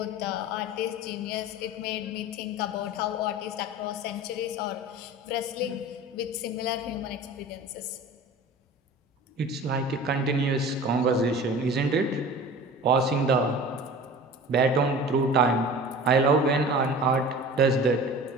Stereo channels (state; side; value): normal; both; correlation 0.38